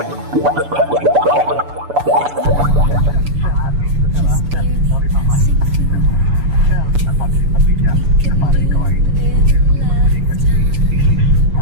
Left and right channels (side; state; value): left; late; 6.9 ms